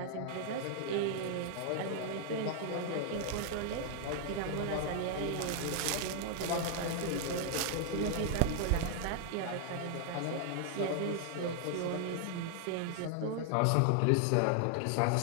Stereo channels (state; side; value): different; both; correlation 0.00